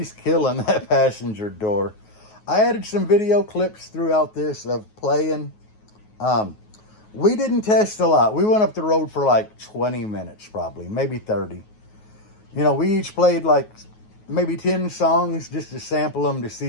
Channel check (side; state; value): right; late; 9.4 ms